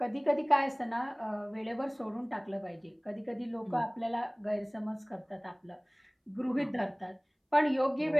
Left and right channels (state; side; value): identical; both; correlation 1.00